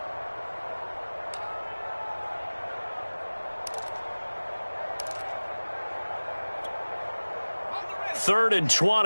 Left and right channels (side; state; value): both; inverted; correlation -1.00